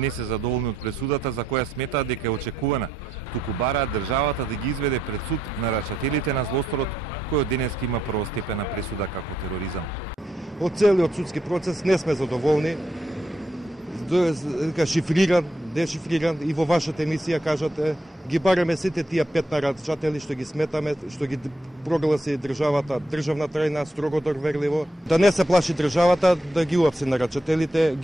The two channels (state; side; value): normal; both; correlation 0.78